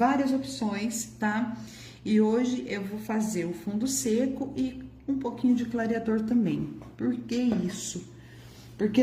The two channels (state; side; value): identical; both; correlation 1.00